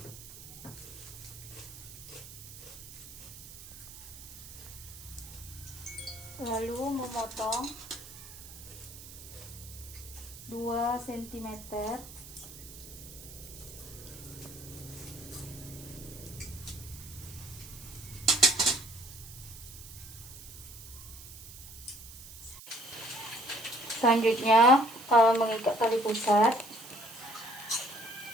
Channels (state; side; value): noise; right; hiss, 15 dB below the sound